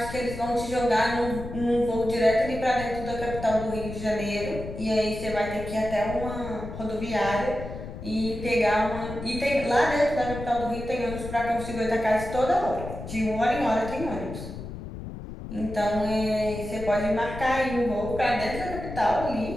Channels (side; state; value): left; noise; rumble, 10 dB below the sound